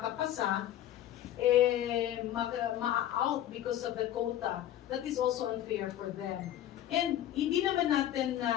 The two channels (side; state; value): right; quieter; 12.1 dB